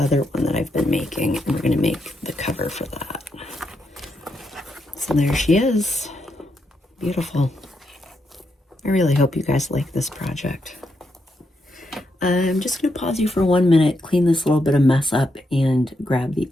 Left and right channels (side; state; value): both; normal; correlation 0.81